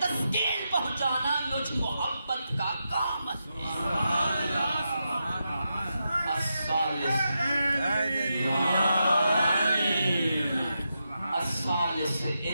پہنچانا مجھ محبت کا کام ہے. الثالث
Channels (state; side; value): inverted; both; correlation -0.86